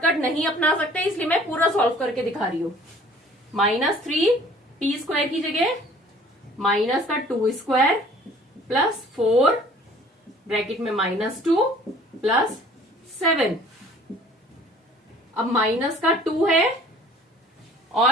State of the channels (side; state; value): both; normal; correlation 0.52